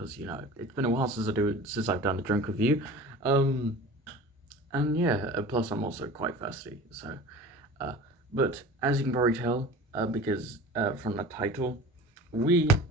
you know, it's been a while since I've done a drink review. And yeah, plus I'm also quite thirsty, so, but as you can probably tell, because from the title, we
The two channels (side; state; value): both; normal; correlation 0.38